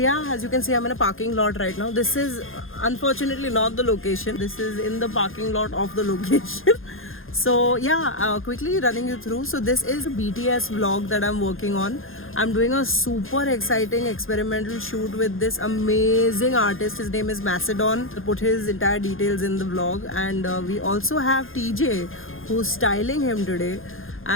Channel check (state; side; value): late; right; 0.60 ms